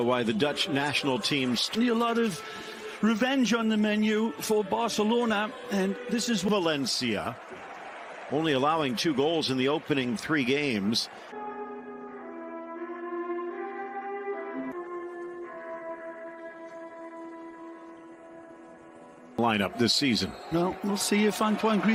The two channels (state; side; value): identical; both; correlation 1.00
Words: why the Dutch national team's a lot of revenge on the menu for Barcelona, and this is Valencia, only allowing 2 goals in the opening 3 games. Lineup this season. Well, we'll see if Antoine